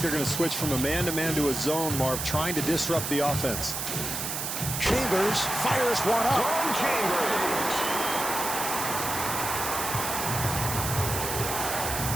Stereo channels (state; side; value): noise; right; hiss, 3 dB below the sound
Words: they're going to switch from a man-to-man to a zone, Marv, trying to disrupt the offense. Chambers fires one up. Tom Chambers.